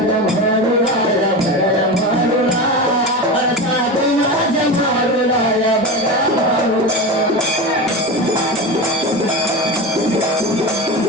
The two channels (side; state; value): both; normal; correlation 0.23